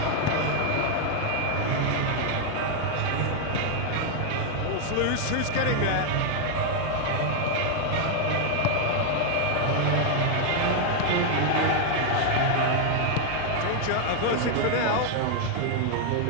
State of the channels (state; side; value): different; both; correlation 0.00